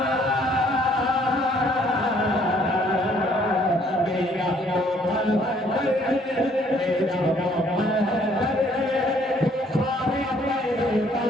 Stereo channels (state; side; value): normal; both; correlation 0.63